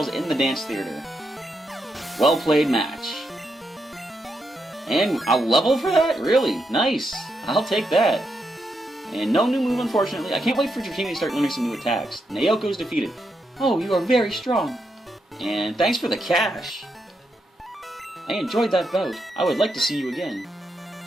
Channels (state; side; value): normal; both; correlation 0.82